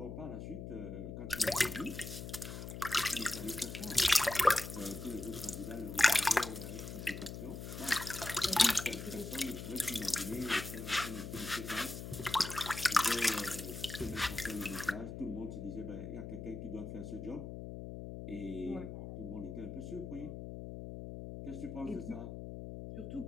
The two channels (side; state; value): left; noise; hum, 8 dB below the sound